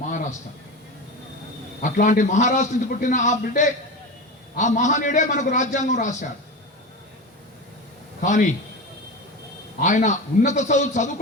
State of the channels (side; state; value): both; normal; correlation 0.25